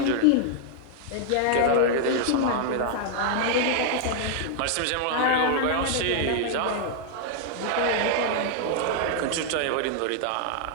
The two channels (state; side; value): different; both; correlation 0.00